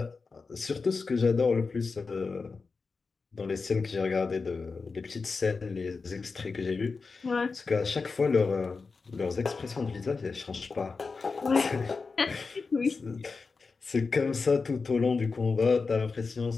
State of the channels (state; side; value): quieter; right; 4.5 dB